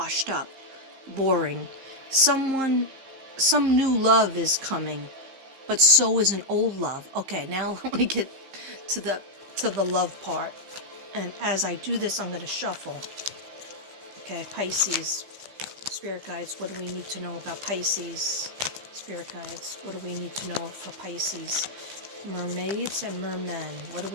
up, boring. Some new love is coming, but so is an old love. Okay, now let me get to the love part. And as I do this, I'm going to shuffle. Okay, Pisces, Spirit Guides, what do we need to know about Pisces? Spirit Guides, what do we need to know for Pisces? Mermaids and mermen, what do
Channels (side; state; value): left; late; 15 ms